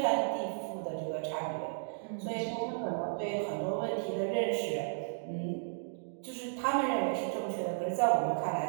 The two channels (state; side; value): silent; left; digital silence